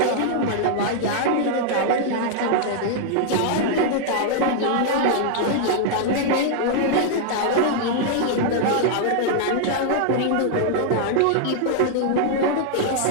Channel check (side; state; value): both; different; correlation -0.01